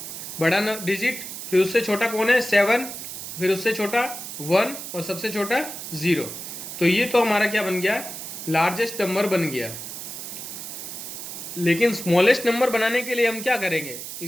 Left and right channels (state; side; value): noise; right; hiss, 9 dB below the sound